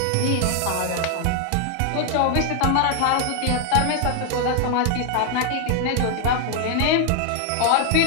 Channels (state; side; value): different; both; correlation 0.00